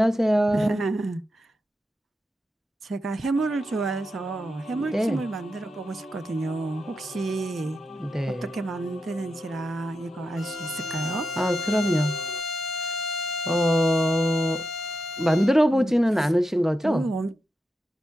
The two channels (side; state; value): both; normal; correlation 0.87